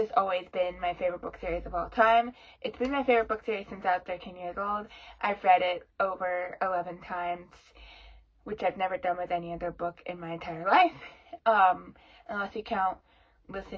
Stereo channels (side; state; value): both; identical; correlation 1.00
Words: always been my favorite book series of all time. It's been my favorite book series since I was 13 years old. I've read it over 11 times, which I've never done with any other book in my entire life, unless you count